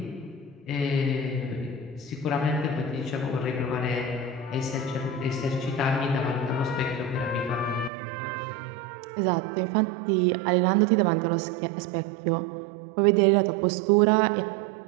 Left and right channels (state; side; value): drops out; left; at 7.9 s